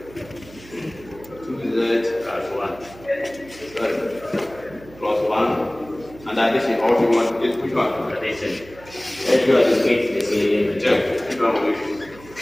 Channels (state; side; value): noise; right; hum, 20 dB below the sound